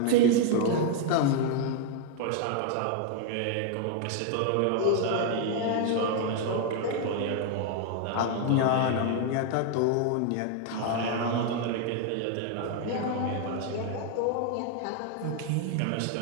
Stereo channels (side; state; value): both; different; correlation 0.00